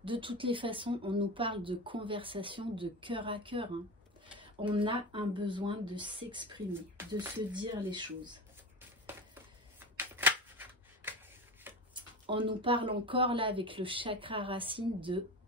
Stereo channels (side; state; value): both; normal; correlation 0.26